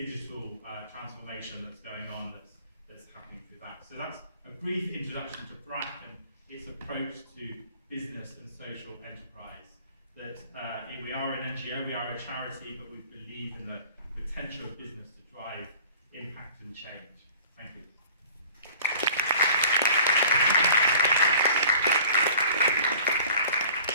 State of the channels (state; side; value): inverted; both; correlation -0.48